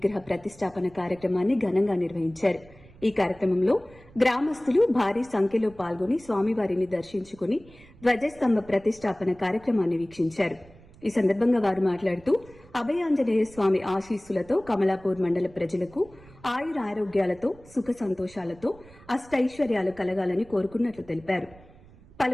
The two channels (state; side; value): noise; right; rumble, 24 dB below the sound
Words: ప్రతిష్టాపన కార్యక్రమాన్ని ఘనంగా నిర్వహించారు. ఈ కార్యక్రమంలో గ్రామస్తులు భారీ సంఖ్యలో పాల్గొని స్వామివారిని దర్శించుకుని ధ్వజస్తంభ ప్రతిష్టాపన కార్యక్రమాన్ని వీక్షించారు. ఈ సందర్భంగా వారు మాట్లాడుతూ అభయాంజనేయ స్వామి ఆశీస్సులతో కమలాపూర్ మండల ప్రజలకు ఆయురారోగ్యాలతో సుఖ సంతోషాలతో అష్టైశ్వర్యాలు కలగాలని కోరుకున్నట్లు తెలిపారు.